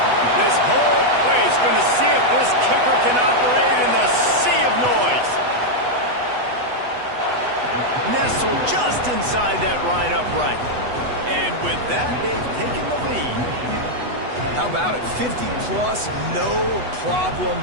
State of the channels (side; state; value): left; late; 8.1 ms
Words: This whole place going to see if this kicker can operate in the sea of noise. Nestled just inside that right upright. And with that, they've taken the lead. How about it? 50-plus, no problem.